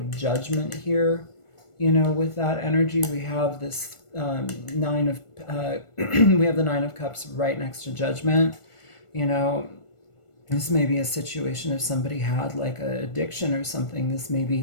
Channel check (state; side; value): late; right; 1.4 ms